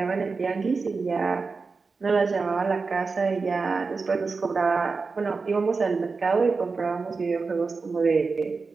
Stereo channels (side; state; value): left; quieter; 4.4 dB